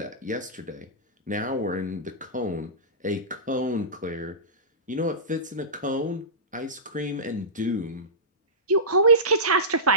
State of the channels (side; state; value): both; normal; correlation -0.19